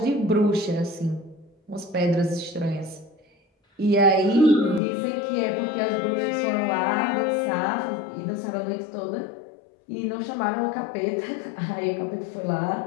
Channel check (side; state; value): right; drops out; at 4.8 s